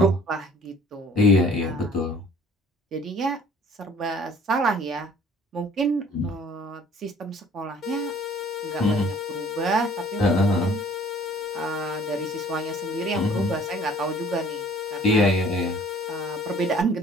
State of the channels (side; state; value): both; normal; correlation 0.53